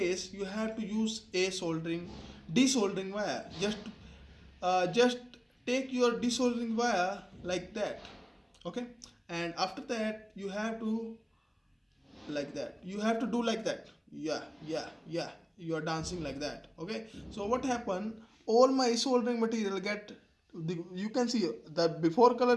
you have to use a desoldering wire. Just take your desoldering wire like that. Okay, and after that you have to like that, you have to do like that. Yeah, you are dancing like that. Okay, so what happened, all my soldering material get you can see the before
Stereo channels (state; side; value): identical; both; correlation 1.00